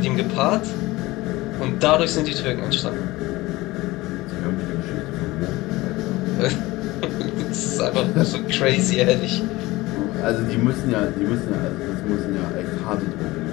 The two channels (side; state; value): right; quieter; 19.9 dB